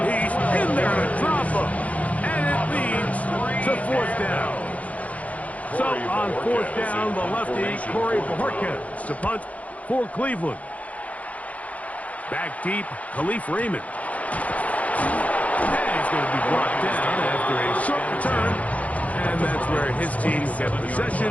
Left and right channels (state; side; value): late; right; 0.068 ms